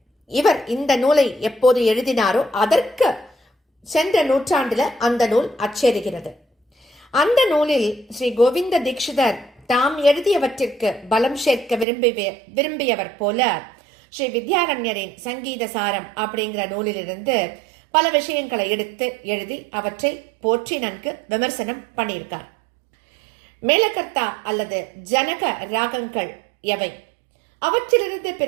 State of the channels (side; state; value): left; drops out; at 11.9 s